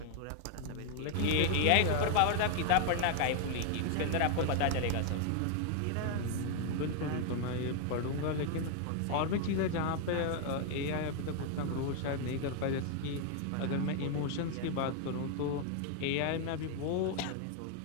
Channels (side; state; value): both; different; correlation 0.00